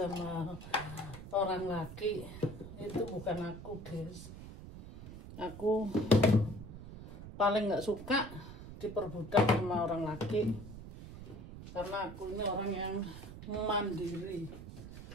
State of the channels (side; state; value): right; noise; rumble, 13 dB below the sound